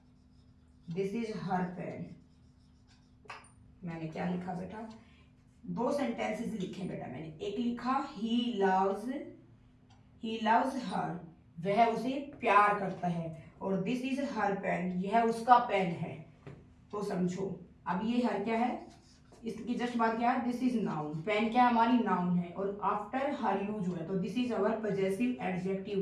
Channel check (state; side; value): identical; both; correlation 1.00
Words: This is her pen, मैंने क्या लिखा बेटा? दो सेंटेंसेस लिखे बेटा मैंने, एक लिखा ही लव्स हर, वह उसे प्यार करता है, और दिस इज हर पेन, यह उसका पेन है। तो समझो अब ये हर क्या है, इसकी जस्ट बात क्या है? दिस इज नाउन, पेन क्या हमारी नाउन है और आफ्टर हर यूज हुआ है तो this is our possessive